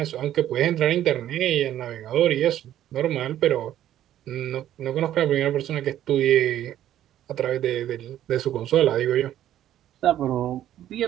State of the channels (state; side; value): quieter; left; 12.0 dB